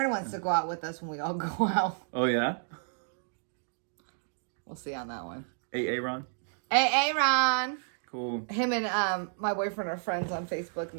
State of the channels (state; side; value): silent; left; digital silence